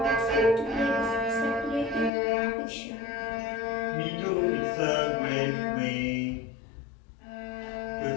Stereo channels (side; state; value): right; drops out; at 2.1 s